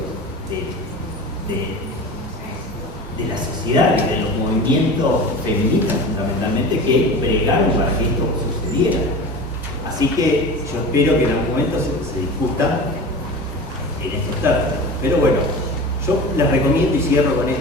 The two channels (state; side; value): normal; both; correlation 0.33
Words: de la sociedad, de los movimientos feministas fundamentalmente, que bregaron para que esto sucediera. Así que yo espero que en algún momento se discuta en estos términos. Pero bueno, yo les recomiendo y cierro con